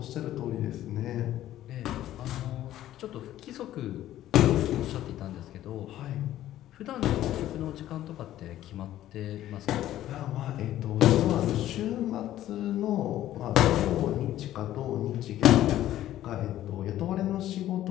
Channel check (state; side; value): quieter; right; 13.2 dB